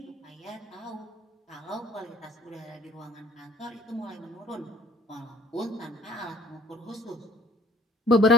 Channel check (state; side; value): normal; both; correlation 0.55